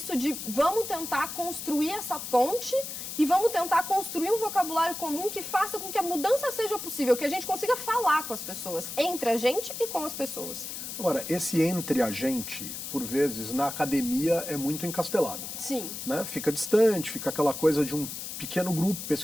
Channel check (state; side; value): noise; left; hiss, 7 dB below the sound